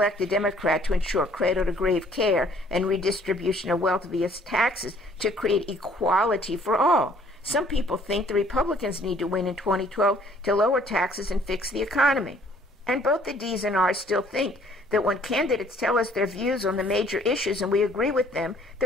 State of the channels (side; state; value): both; normal; correlation 0.60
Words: a Democrat to ensure cradle-to-grave care and redistribution of wealth via taxes to create equality for all. Some people think the Republicans need to win in 2012 to lower taxes and fix the economy. And both the D's and R's still think that when candidates tell us their views on the major issues and we agree with them,